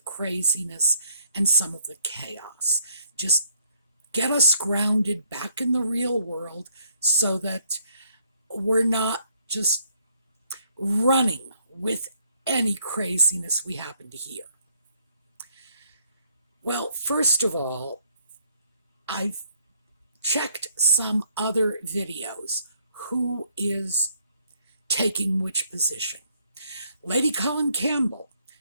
craziness and some of the chaos. Just get us grounded back in the real world so that we're not just running with any craziness we happen to hear. Well, first of all, I've checked some other videos. Who is taking which position? Lady Colin Campbell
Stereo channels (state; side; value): inverted; both; correlation -0.68